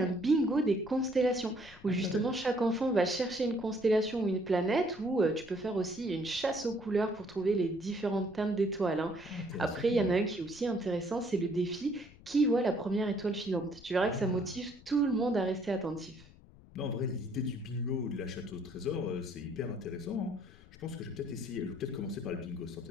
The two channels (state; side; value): noise; left; rumble, 22 dB below the sound